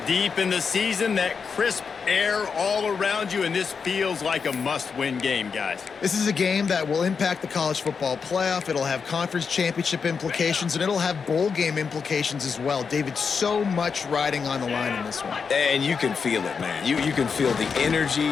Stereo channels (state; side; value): quieter; right; 5.7 dB